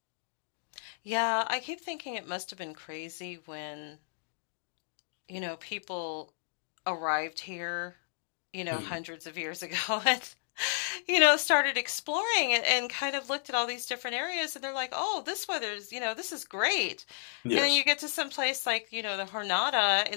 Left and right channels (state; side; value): silent; right; digital silence